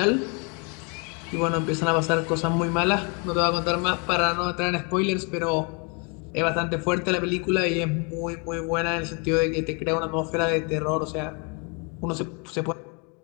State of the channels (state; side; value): quieter; right; 32.9 dB